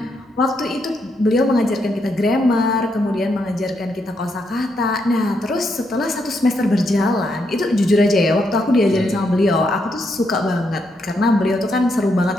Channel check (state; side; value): normal; both; correlation 0.79